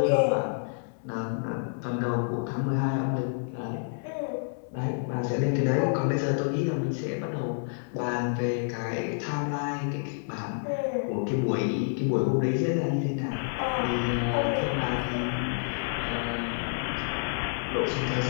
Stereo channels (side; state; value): right; silent; 59 dB below the other